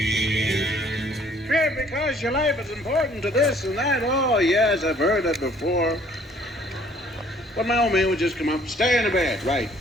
Sure, because your life is important to this and that. Oh, yes, I've heard that before. But my old man would just come up, stay in the bed. Right,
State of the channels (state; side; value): normal; both; correlation 0.59